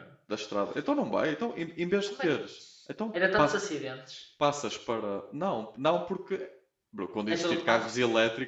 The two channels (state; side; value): identical; both; correlation 1.00